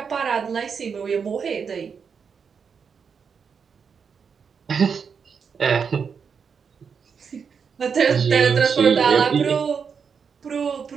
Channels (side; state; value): left; quieter; 6.3 dB